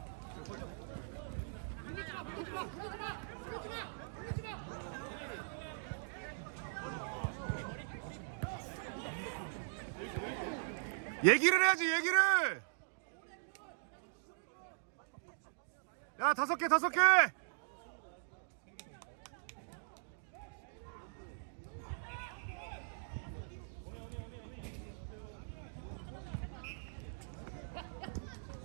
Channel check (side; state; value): left; silent; digital silence